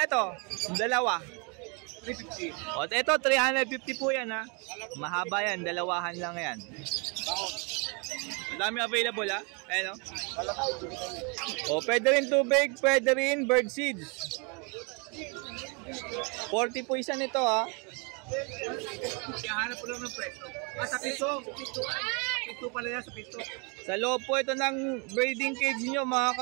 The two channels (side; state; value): left; quieter; 33.8 dB